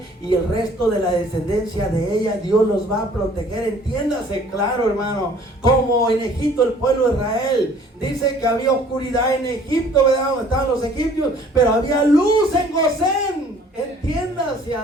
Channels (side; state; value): both; normal; correlation 0.55